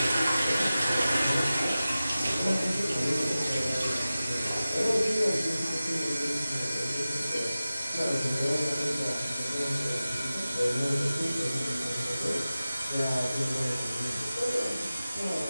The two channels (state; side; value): inverted; both; correlation -0.95